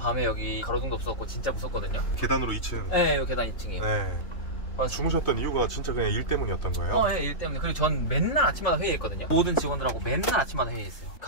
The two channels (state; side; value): late; right; 3.3 ms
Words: 여기 가로등도 없었고 진짜 무섭거든요. 계단으로 2층. 네, 여기 계단 2층이에요. 네. 주무셨던 이유가 진짜 그냥 일 때문이었던 거예요? 네, 일 때문에. 그리고 전 맨날 아침마다 회의했거든요. 모든 직원들하고 맨날 아침마다 회의했어요.